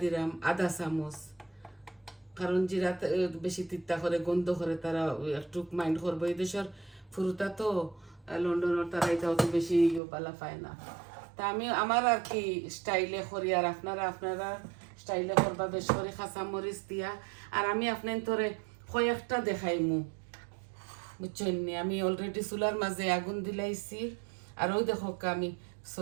দিলাম, আধা চামচ। কারণ জিরা বেশি তিতা করে, গন্ধ করে, তারা একটু মাইন্ড করবো। এই দেশের ফুরুতা তো, লন্ডনের তারা এটা অত বেশি বালা পায় না। তা আমি আমার আর কি স্টাইলে করি, আর আপনারা স্টাইলে করবা বেশ করে খাঁচা মরিচ দিয়া। আর আমি আপনার তোরে কয়েকটা দেখাইমু, বুঝছেন? আমি অলরেডি চুলার মাঝে আগুন দিলাইছি। আর ওই দেখো আমি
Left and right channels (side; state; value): left; drops out; at 10.0 s